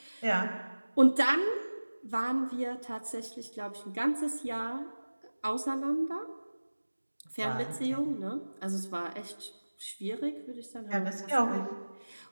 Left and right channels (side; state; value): both; inverted; correlation -1.00